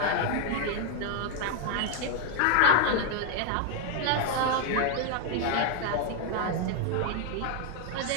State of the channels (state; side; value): different; both; correlation 0.00